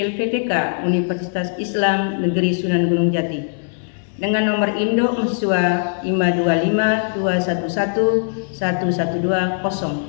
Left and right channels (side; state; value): right; silent; 62 dB below the other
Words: Universitas Islam Negeri Sunan Gunung Jati dengan nomor induk mahasiswa